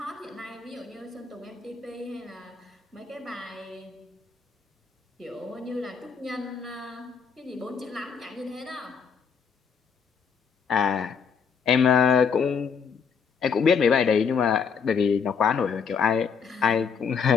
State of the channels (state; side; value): quieter; right; 6.2 dB